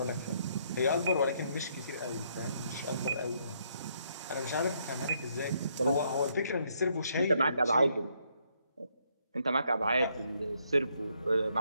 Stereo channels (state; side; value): inverted; both; correlation -0.72